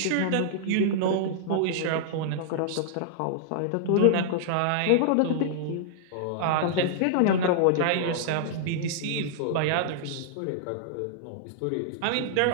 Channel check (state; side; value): different; both; correlation -0.01